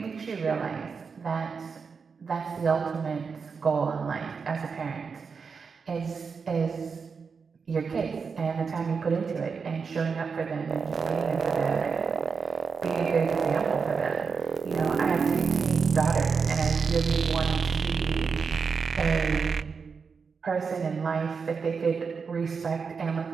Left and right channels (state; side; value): quieter; left; 5.5 dB